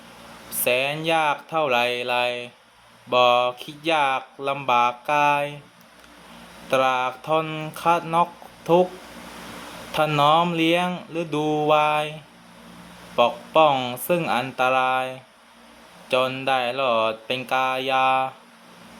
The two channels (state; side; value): identical; both; correlation 1.00